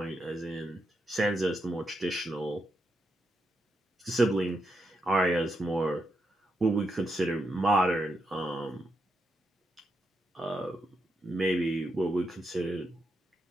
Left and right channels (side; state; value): both; normal; correlation 0.83